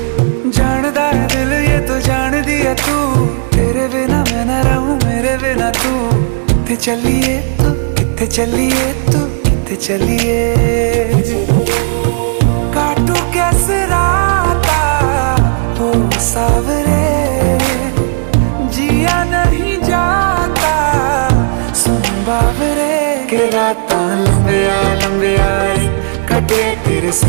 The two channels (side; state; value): left; silent; digital silence